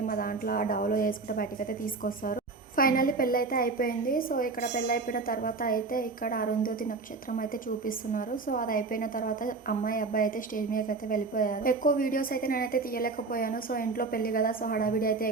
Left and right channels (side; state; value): left; quieter; 4.0 dB